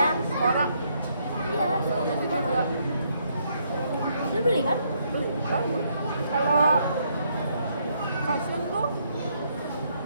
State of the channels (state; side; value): inverted; both; correlation -0.73